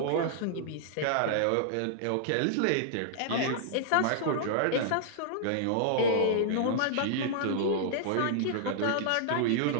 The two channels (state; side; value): different; both; correlation -0.01